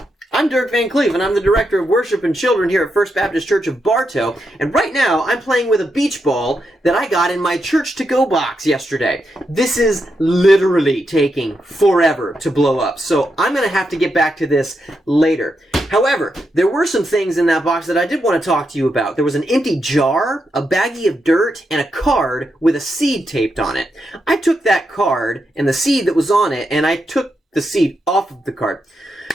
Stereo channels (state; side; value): normal; both; correlation 0.84